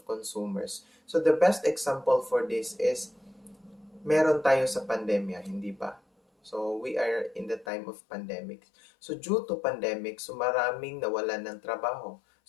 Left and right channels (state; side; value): drops out; right; at 7.7 s